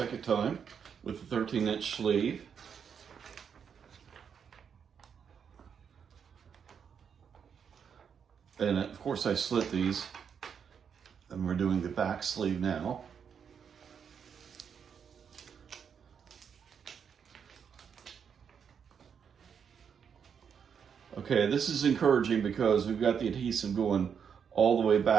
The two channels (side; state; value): left; quieter; 7.2 dB